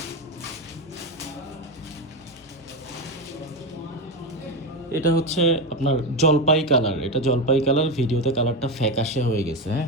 এটা হচ্ছে আপনার জলপাই কালার। এটা জলপাই কালার, ভিডিওতে কালারটা ফ্যাকাশে হয়ে গেছে।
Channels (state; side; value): normal; both; correlation 0.14